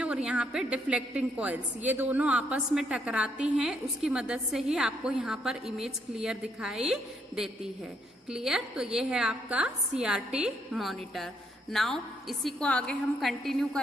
और यहाँ पे डिफ्लेक्टिंग कॉइल्स, ये दोनों आपस में टकराती हैं, उसकी मदद से ही आपको यहाँ पर इमेज क्लियर दिखाई देती है। क्लियर, तो ये है आपका CRT मॉनिटर। नाउ इसी को आगे हम कंटिन्यू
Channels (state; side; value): normal; both; correlation 0.73